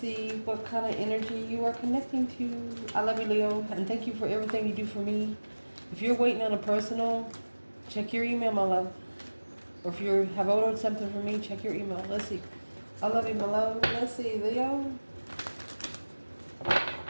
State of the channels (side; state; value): both; inverted; correlation -1.00